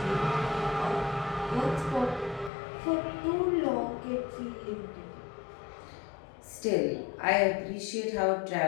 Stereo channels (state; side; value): drops out; right; at 2.5 s